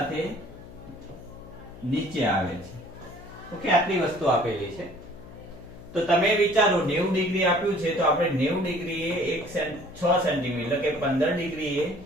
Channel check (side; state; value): left; noise; hum, 17 dB below the sound